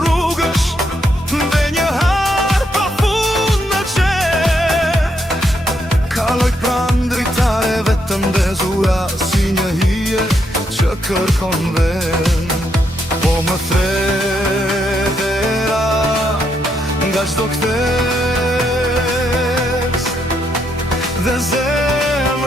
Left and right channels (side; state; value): both; normal; correlation 0.77